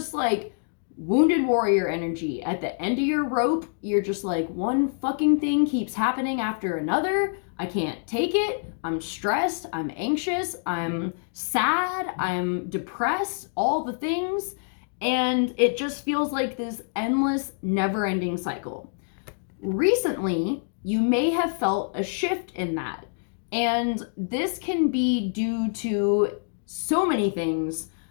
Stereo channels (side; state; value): right; silent; digital silence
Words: like wounded warrior energy. At the end of your rope, you're just like, one fucking thing keeps happening after another. I can't take it. I'm stressed. I'm anxious. I'm sad. I'm depressed. All the things. And it just feels like this endless, never-ending cycle. Recently, you may have felt a shift in that. And this can be due to so many things.